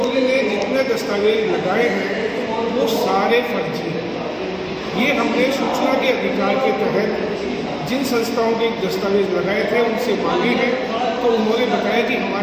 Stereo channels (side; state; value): both; identical; correlation 1.00